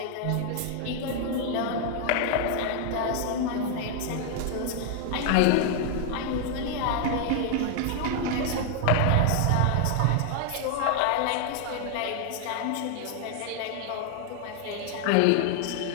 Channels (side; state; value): both; different; correlation 0.00